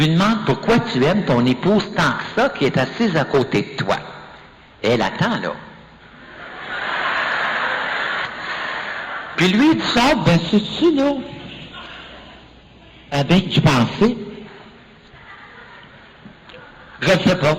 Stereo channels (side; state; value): both; identical; correlation 1.00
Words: demande pourquoi tu aimes ton épouse tant que ça qui est assise à côté de toi. Et elle attend là. Puis lui, il sort, ben c'est-tu là? Ah ben, tu pensais? Je ne sais pas.